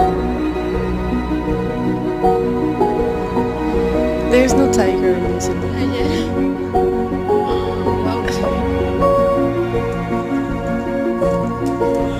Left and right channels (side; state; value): both; identical; correlation 1.00